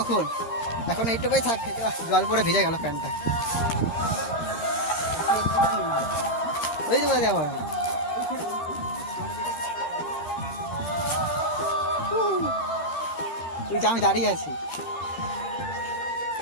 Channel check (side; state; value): right; late; 12 ms